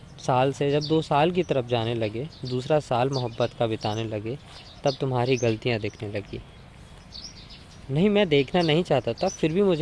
साल से जब 2 साल की तरफ जाने लगे, दूसरा साल मोहब्बत का बिताने लगे, तब तुम्हारी गलतियाँ दिखने लगी। नहीं, मैं देखना नहीं चाहता था, फिर भी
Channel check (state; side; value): identical; both; correlation 1.00